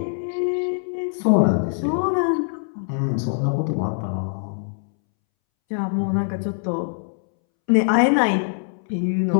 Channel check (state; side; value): silent; right; 64 dB below the other